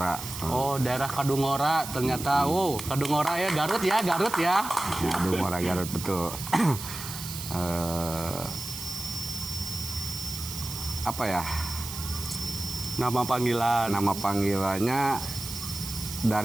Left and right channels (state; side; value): noise; right; hiss, 9 dB below the sound